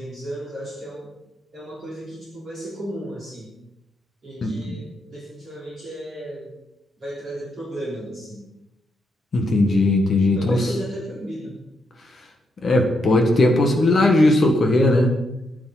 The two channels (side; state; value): both; normal; correlation 0.80